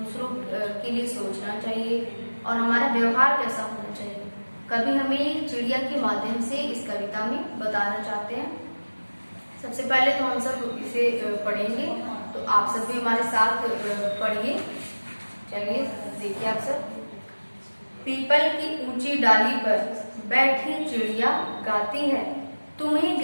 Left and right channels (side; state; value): both; inverted; correlation -1.00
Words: के लिए सोचना चाहिए और हमारा व्यवहार कैसा होना चाहिए। कवि हमें चिड़िया के माध्यम से इस कविता में बताना चाहते हैं। सबसे पहले तो हम सब इसे पढ़ेंगे, तो आप सब भी हमारे साथ पढ़िए। चलिए देखिए आप सब। पीपल की ऊंची डाली पर बैठी चिड़िया गाती है, तुम्हें